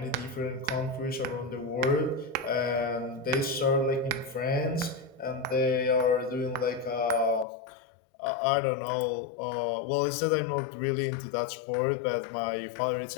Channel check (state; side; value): drops out; right; at 7.5 s